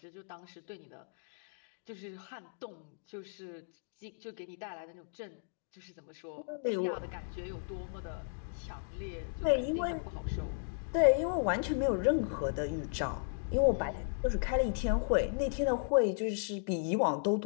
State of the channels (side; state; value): right; silent; digital silence